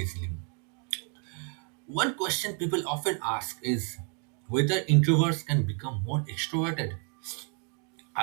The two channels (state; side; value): quieter; left; 39.7 dB